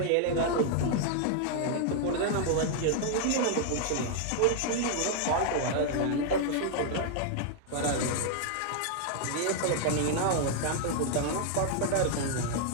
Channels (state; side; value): different; both; correlation 0.00